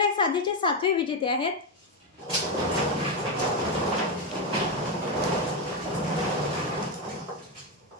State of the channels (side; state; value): both; normal; correlation 0.07